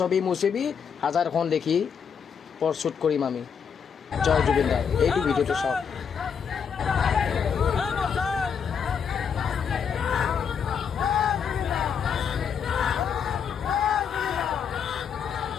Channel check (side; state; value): right; quieter; 7.0 dB